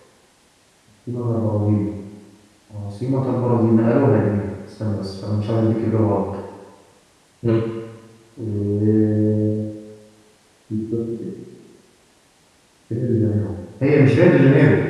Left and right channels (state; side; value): identical; both; correlation 1.00